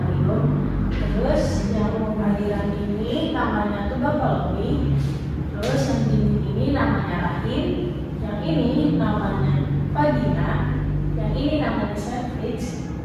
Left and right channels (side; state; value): both; identical; correlation 1.00